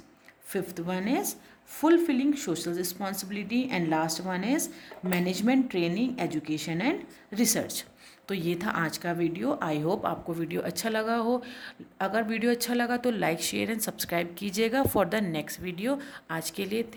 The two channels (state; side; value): identical; both; correlation 1.00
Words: fifth one is fulfilling social responsibility, and last one is management training, education and research। तो ये था आज का video. I hope आपको video अच्छा लगा हो। अगर वीडियो अच्छा लगा तो लाइक शेयर एंड सब्सक्राइब कीजिएगा फॉर द नेक्स्ट वीडियो। आज के लिए